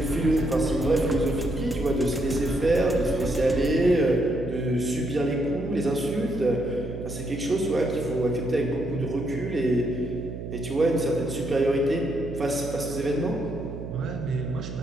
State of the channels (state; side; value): noise; right; hum, 9 dB below the sound